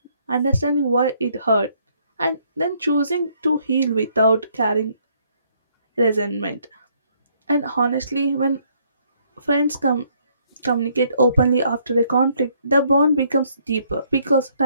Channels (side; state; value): both; inverted; correlation -0.68